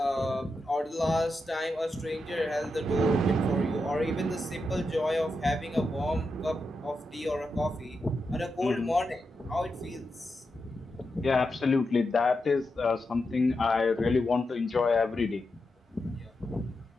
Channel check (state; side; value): normal; both; correlation 0.87